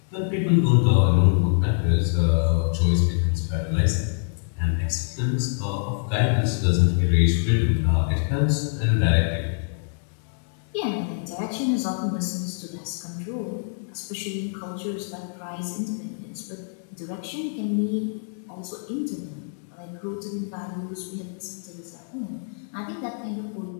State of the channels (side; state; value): right; silent; digital silence